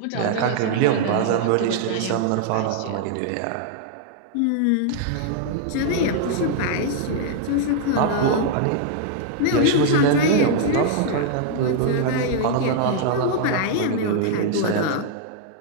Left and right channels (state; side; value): different; both; correlation 0.00